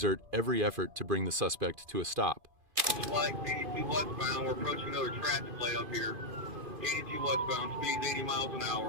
every effort to bring the suspect to a stop. Like 82 westbound, we're approaching another traffic light up here. 82 westbound, speeds 80 miles an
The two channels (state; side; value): late; left; 2.5 ms